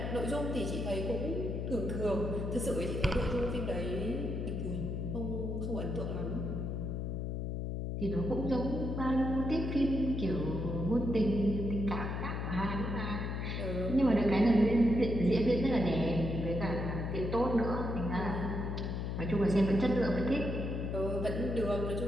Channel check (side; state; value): left; noise; hum, 2 dB below the sound